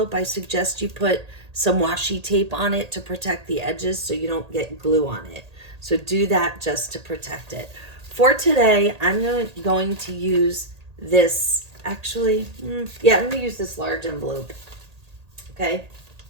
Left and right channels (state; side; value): late; left; 1.8 ms